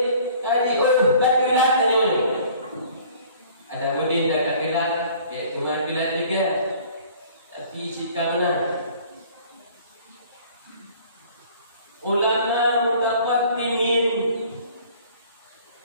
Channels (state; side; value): inverted; both; correlation -0.52